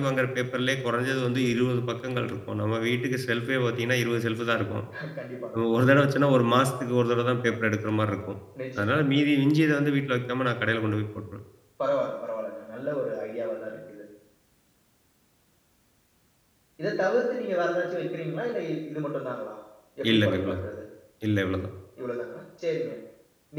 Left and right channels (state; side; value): identical; both; correlation 1.00